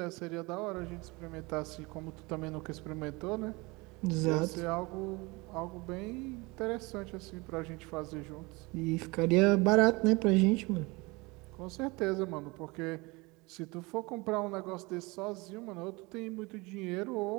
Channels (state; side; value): quieter; left; 25.0 dB